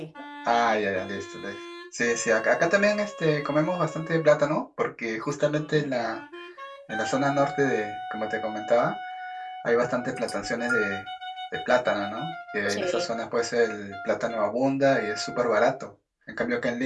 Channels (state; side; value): identical; both; correlation 1.00